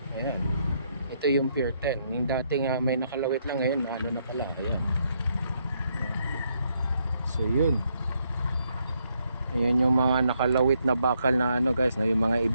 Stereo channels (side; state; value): both; inverted; correlation -0.76